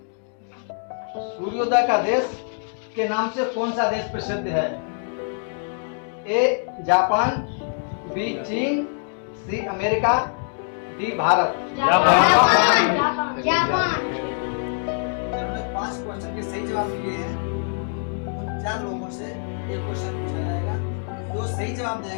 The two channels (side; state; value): right; silent; 63 dB below the other